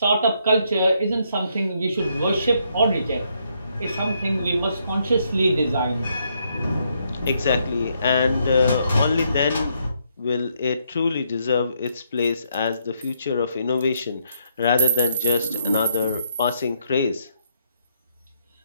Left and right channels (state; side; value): inverted; both; correlation -0.75